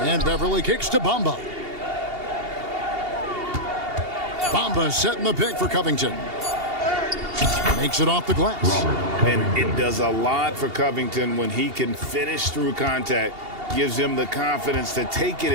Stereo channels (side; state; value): left; late; 2.8 ms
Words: Beverly kicks to Bamba. Bamba setting the pick for Covington. Makes it off the glass. And it does a lot for Covington when he can finish through contact. Gives him the confidence to take it